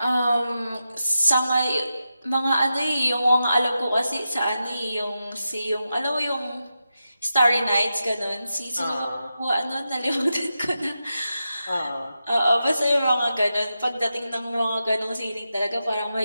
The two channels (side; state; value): both; inverted; correlation -0.89